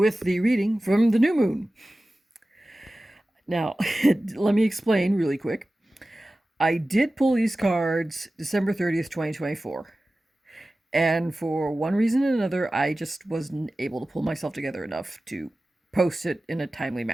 the reading from the new moon. Now, let me explain really quick. I did pull these cards December 30th, 2024. And for one reason or another, I just wasn't able to pull myself together enough to post it in a timely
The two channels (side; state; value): both; normal; correlation 0.96